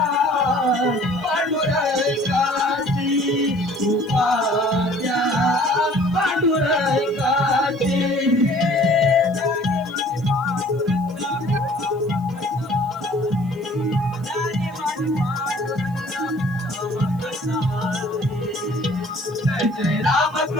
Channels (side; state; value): right; noise; hiss, 29 dB below the sound